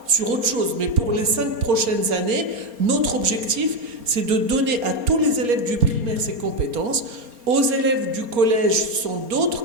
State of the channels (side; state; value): left; late; 4.3 ms